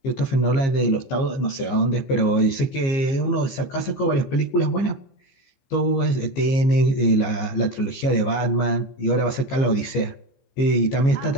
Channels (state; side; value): late; right; 15 ms